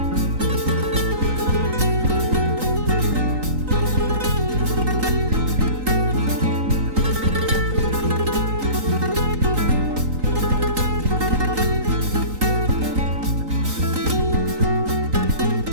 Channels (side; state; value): left; late; 3.9 ms